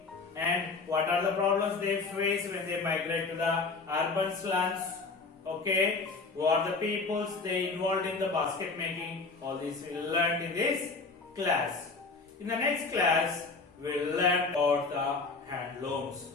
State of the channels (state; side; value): quieter; right; 4.1 dB